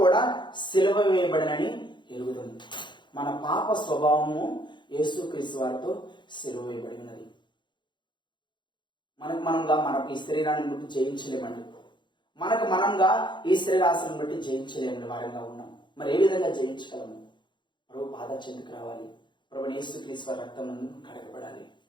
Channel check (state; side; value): late; right; 0.22 ms